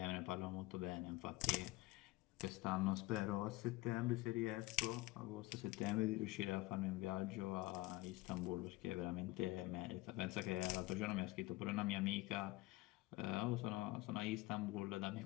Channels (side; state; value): right; quieter; 19.4 dB